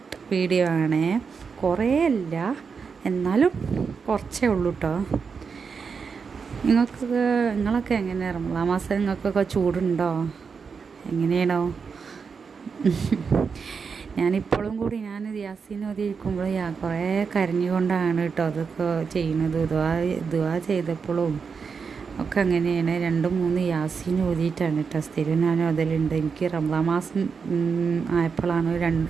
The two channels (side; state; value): left; quieter; 5.6 dB